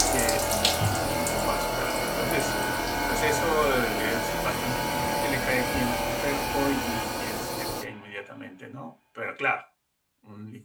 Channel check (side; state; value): both; identical; correlation 1.00